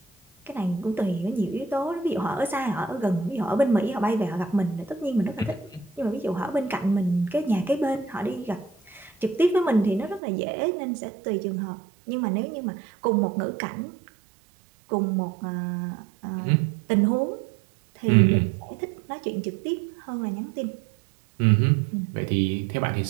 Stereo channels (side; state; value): left; drops out; at 10.2 s